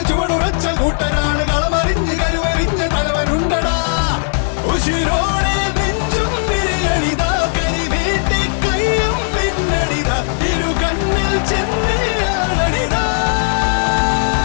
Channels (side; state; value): right; silent; 69 dB below the other